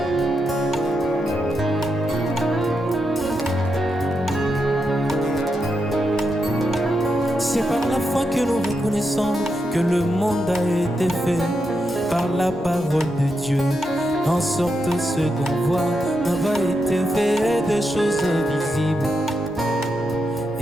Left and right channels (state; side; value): noise; right; rumble, 23 dB below the sound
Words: C'est par la foi que nous reconnaissons que le monde a été fait par la parole de Dieu, en sorte que ce qu'on voit n'a pas été fait des choses visibles.